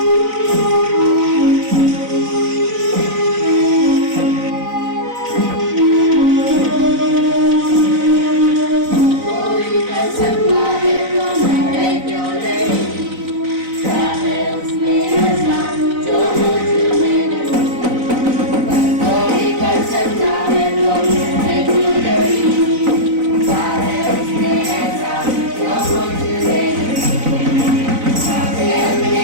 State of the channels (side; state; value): left; late; 4.0 ms